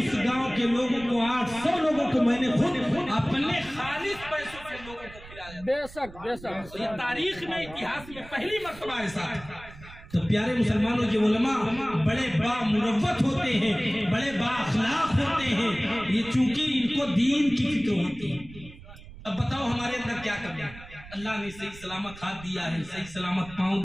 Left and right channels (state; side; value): noise; right; rumble, 18 dB below the sound